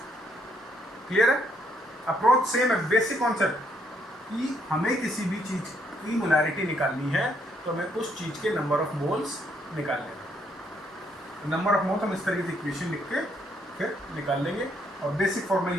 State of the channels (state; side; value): normal; both; correlation 0.71